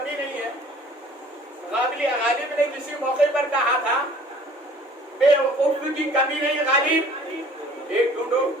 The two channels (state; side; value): normal; both; correlation 0.52